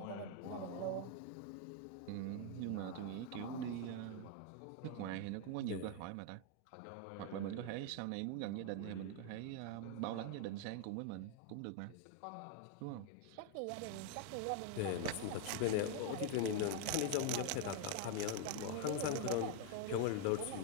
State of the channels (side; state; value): both; different; correlation 0.00